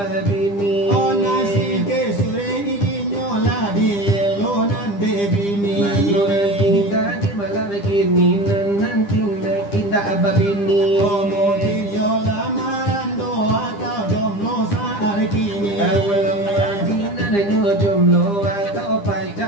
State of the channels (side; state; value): right; late; 9.9 ms